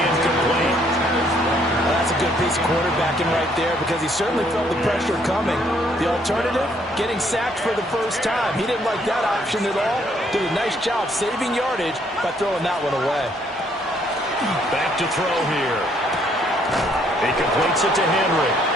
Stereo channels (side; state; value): both; normal; correlation 0.67